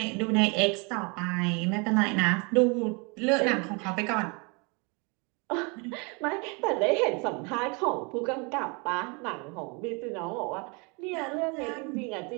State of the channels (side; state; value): left; quieter; 31.6 dB